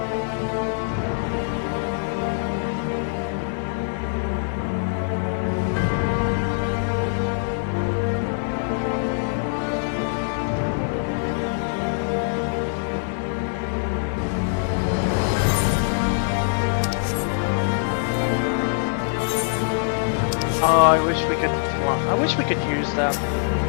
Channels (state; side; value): silent; right; digital silence